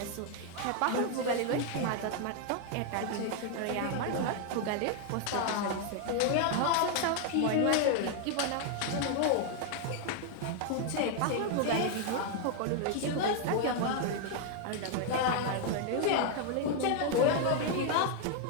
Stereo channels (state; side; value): different; both; correlation 0.00